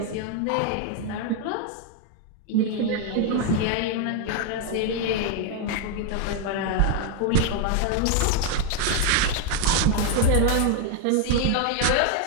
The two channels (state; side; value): different; both; correlation 0.01